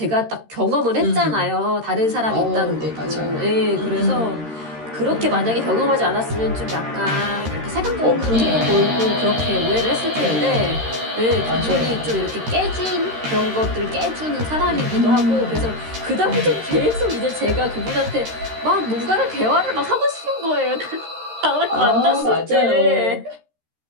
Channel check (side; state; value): left; late; 13 ms